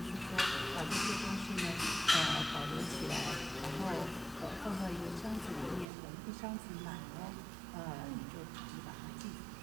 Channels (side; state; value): left; drops out; at 5.9 s